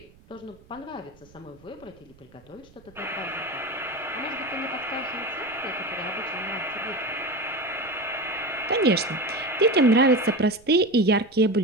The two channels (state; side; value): noise; right; rumble, 26 dB below the sound